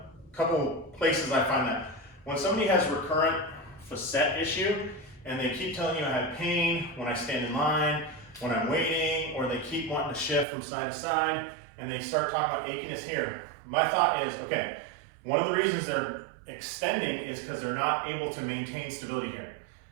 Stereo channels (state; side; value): drops out; left; at 10.5 s